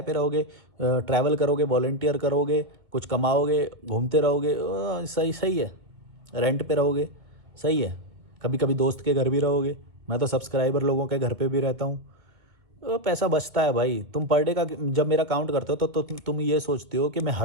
पे रहोगे, ट्रैवल करोगे, वॉलंटियर करोगे, कुछ कमाओगे, घूमते रहोगे, सही है। रेंट पे रहोगे, सही है। कभी कभी दोस्त के घर भी रहोगे, मैं तो सब्सक्राइबर लोगों के घर पे भी रहता हूँ। पैसा बचता है भाई। तुम पर डे का जब मेरा काउंट करते हो तो तुम ये सोचते हो कि मैं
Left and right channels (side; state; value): left; late; 2.0 ms